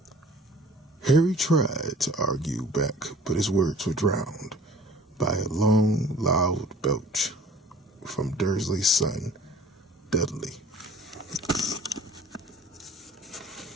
Harry tried to argue back, but his words were drowned by a long, loud belch from Dursley's son, Dudley.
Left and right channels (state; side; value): normal; both; correlation 0.49